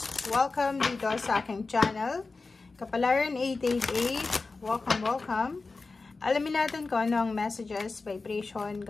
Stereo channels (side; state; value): right; quieter; 3.9 dB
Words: Welcome dito sa aking channel. Kapalaran 888, welcome. Alamin natin kung ano ang messages, vibration,